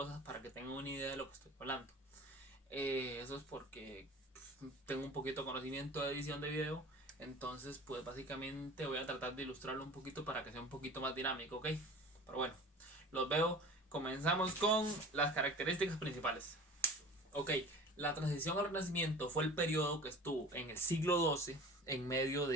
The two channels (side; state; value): both; normal; correlation 0.41